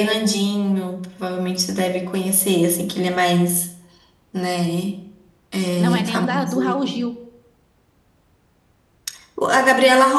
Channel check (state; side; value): identical; both; correlation 1.00